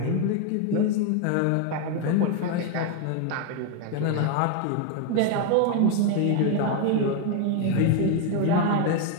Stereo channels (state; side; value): different; both; correlation 0.01